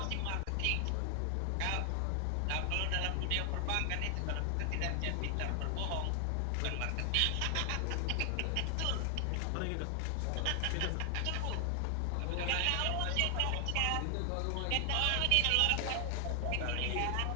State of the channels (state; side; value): different; both; correlation 0.00